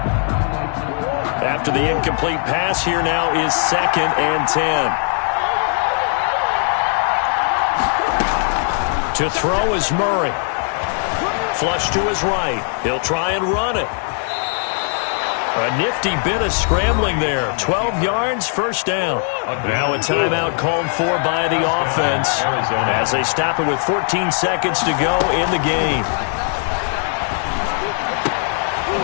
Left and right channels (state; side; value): silent; right; 56 dB below the other